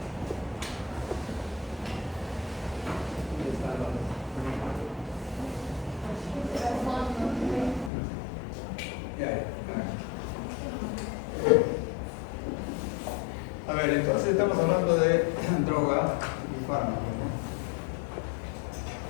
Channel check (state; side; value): drops out; right; at 7.9 s